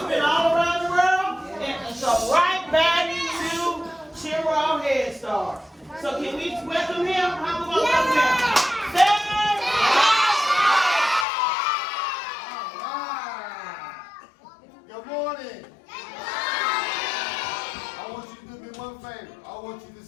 been all around the world and so right back to Chiraw Head Start. So can we welcome him? How we going to welcome him? Good morning. I want you to do me one favor. I want you to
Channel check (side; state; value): right; drops out; at 11.2 s